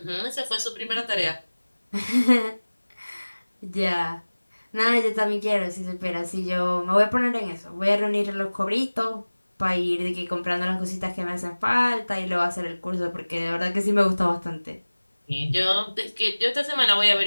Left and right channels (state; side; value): inverted; both; correlation -1.00